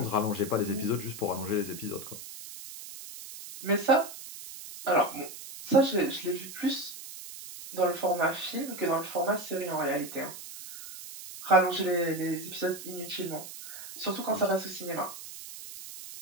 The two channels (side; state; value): right; noise; hiss, 12 dB below the sound